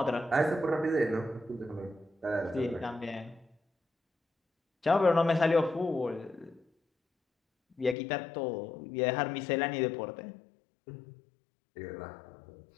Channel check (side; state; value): right; drops out; at 8.0 s